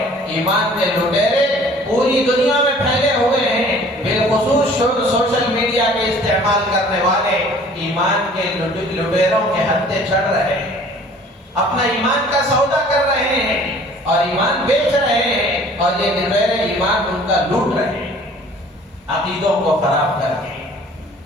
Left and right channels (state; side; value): normal; both; correlation 0.51